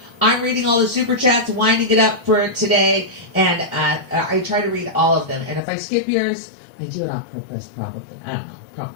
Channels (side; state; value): right; drops out; at 5.6 s